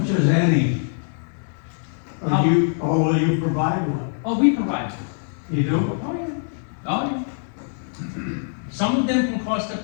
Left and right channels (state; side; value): silent; right; digital silence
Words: is any? Or will you provide one? Oh, we provide. You do? Oh, yeah. Oh, yeah. Some of them can cost up